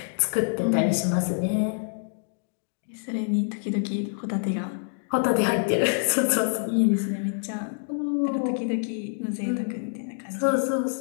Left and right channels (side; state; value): right; silent; digital silence